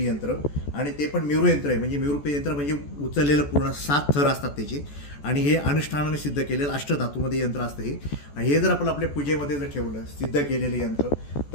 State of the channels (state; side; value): late; right; 14 ms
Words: आणि ते पण मेरू यंत्र आहे, म्हणजे मेरू यंत्र म्हणजे उचललेलं पूर्ण 7 थर असतात त्याचे. आणि हे अनुष्ठानाने सिद्ध केलेलं अष्टधातूमध्ये यंत्र असतं हे. आणि हे जर आपण आपल्या पूजेमध्ये जर ठेवलं सिद्ध केलेलं यंत्र